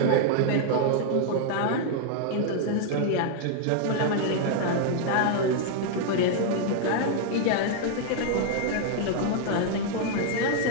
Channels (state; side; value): different; both; correlation 0.00